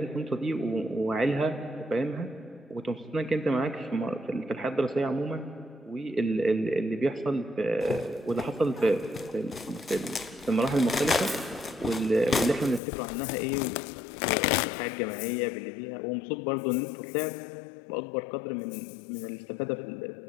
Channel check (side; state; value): right; drops out; at 12.8 s